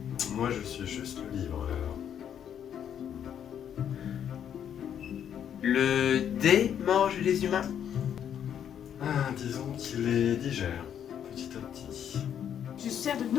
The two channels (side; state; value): right; quieter; 9.1 dB